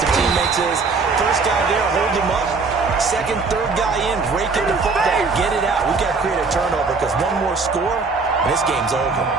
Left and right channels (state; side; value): quieter; left; 4.4 dB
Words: teammates is, first guy there, hold him up. 2nd, 3rd guy in, break in the football, get it out. We've got to create a turnover because one more score, and this game's over.